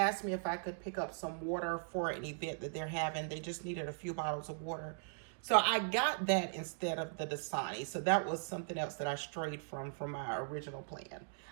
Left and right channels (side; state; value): left; silent; digital silence